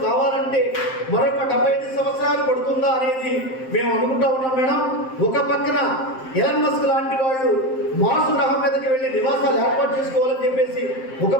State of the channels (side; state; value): right; late; 7.7 ms